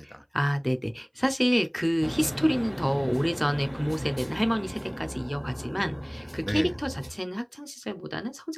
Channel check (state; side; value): identical; both; correlation 1.00